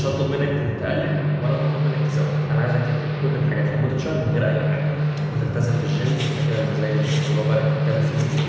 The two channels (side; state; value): both; identical; correlation 1.00